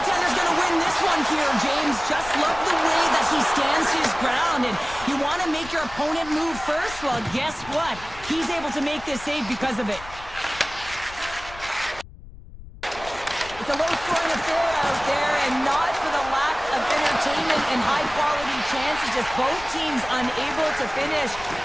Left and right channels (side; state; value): left; noise; rumble, 17 dB below the sound